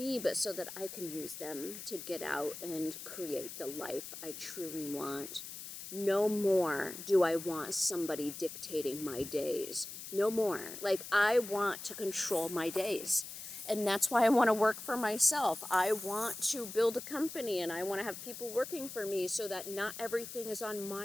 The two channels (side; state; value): left; noise; hiss, 10 dB below the sound